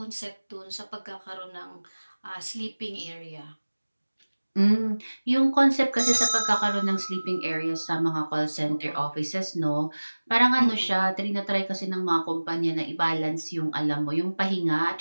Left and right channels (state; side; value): inverted; both; correlation -1.00